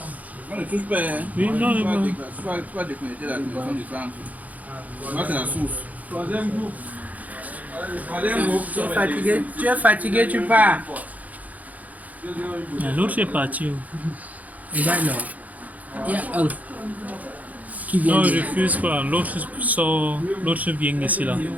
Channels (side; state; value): left; late; 0.076 ms